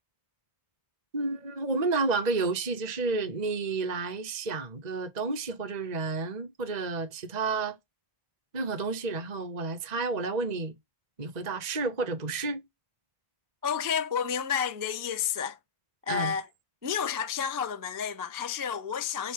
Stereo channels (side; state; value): left; late; 1.9 ms